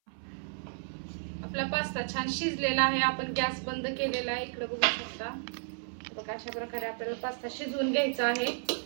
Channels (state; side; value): silent; left; 56 dB below the other